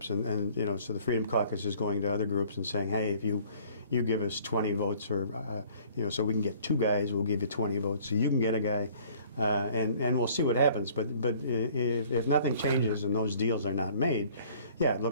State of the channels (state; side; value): inverted; both; correlation -0.55